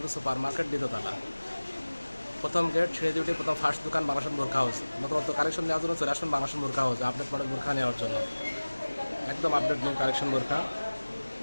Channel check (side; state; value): both; inverted; correlation -1.00